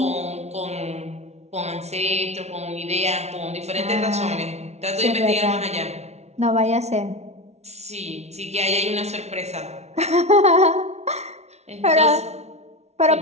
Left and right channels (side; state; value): left; late; 0.31 ms